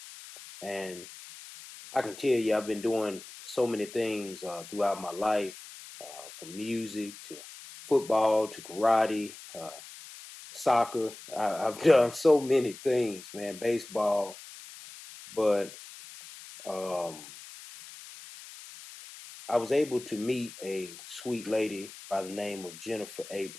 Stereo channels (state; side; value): noise; left; hiss, 16 dB below the sound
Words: and I can tell you I've been doing so many things throughout my life, from music to football to karate, soccer. I've done so many things, man, baseball, but um, I was able to meet a sweet lady by the name of Jennifer